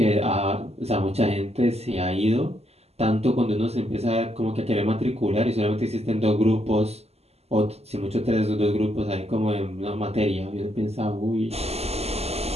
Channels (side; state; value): left; late; 0.30 ms